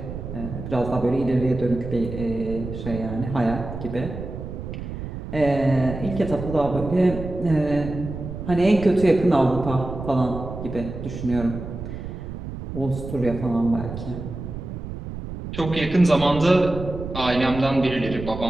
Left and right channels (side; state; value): right; noise; rumble, 8 dB below the sound